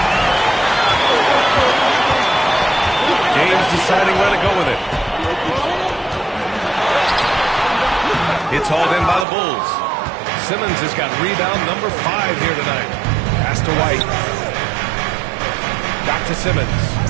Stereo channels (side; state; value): left; drops out; at 9.2 s